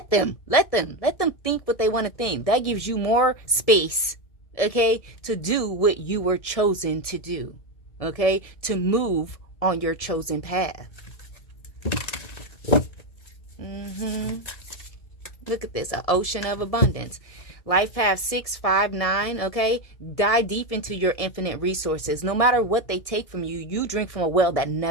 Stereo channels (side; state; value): right; late; 1.7 ms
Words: them think what they want to think. That gives you more space, okay, to do what you were chosen to do, okay, to move on your chosen path. Look at this, an ocean of abundance. Life path 659, okay? Dive deep into your infinite resources. No matter what they take from you, you drink from a well that